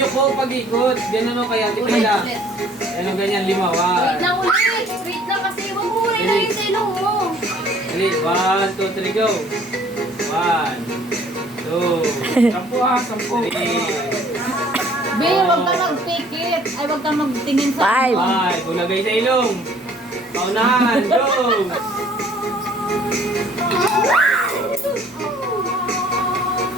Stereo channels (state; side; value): normal; both; correlation 0.56